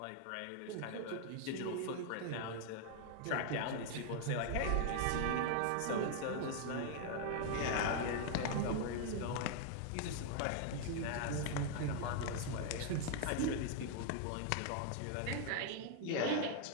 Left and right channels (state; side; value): different; both; correlation 0.00